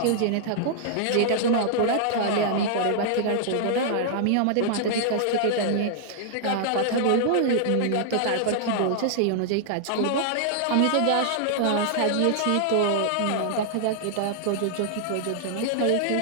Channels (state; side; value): different; both; correlation -0.01